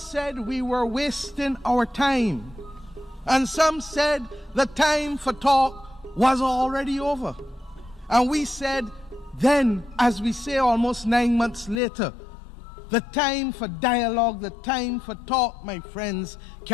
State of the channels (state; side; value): drops out; right; at 11.8 s